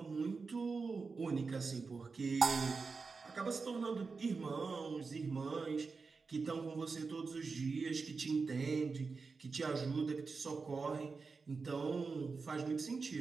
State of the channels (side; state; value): left; quieter; 4.6 dB